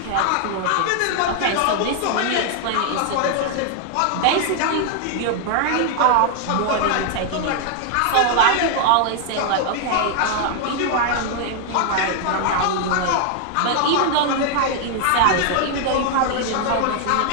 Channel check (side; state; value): both; different; correlation 0.00